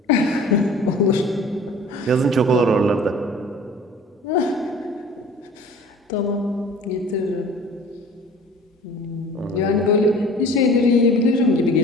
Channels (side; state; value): both; normal; correlation 0.46